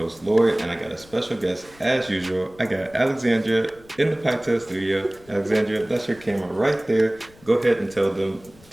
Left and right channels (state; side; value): noise; left; rumble, 25 dB below the sound